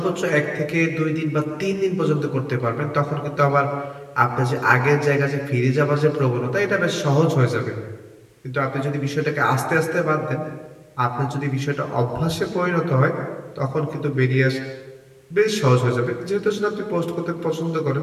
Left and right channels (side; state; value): both; identical; correlation 1.00